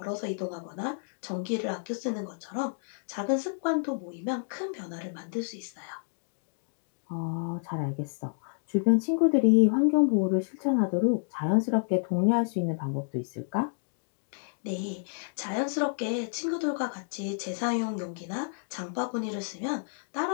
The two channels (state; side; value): silent; right; digital silence